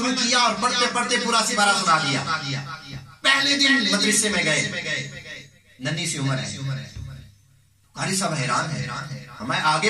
کیا اور پڑھتے پڑھتے پورا سپارہ سنا دیا. پہلے دن مدرسے میں گئے, ننھی سی عمر ہے. قاری صاحب حیران ہے, ہمیں آگے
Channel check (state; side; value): identical; both; correlation 1.00